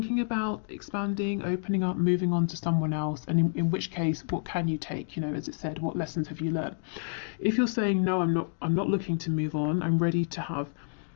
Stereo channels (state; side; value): silent; right; digital silence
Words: about expanding, opening up, moving on to someone else, and in which case, what can you take? You know, as it said, what lessons have you learned? If you're saying, no, I'm not looking to move on, I'm ready to have